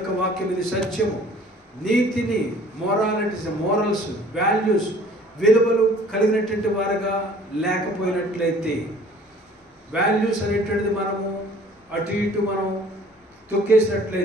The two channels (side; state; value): both; normal; correlation 0.52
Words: వాక్యం ఇది సత్యము. నీతిని, మోరల్స్, వాల్యూస్, విలువలు కలిగినటువంటి వారుగా లేకపోయినట్లయితే, వాల్యూస్ అనేటువంటిది మనము అటు ఇటు మనం